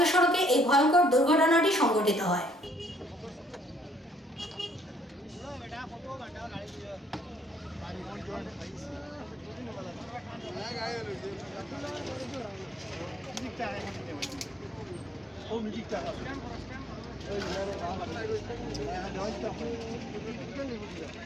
সড়কে এই ভয়ঙ্কর দুর্ঘটনাটি সংঘটিত হয়।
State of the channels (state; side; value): normal; both; correlation 0.66